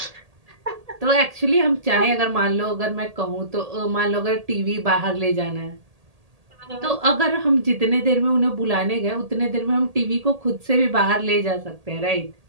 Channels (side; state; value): left; late; 1.8 ms